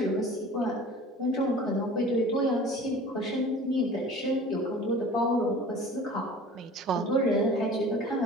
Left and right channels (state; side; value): normal; both; correlation 0.42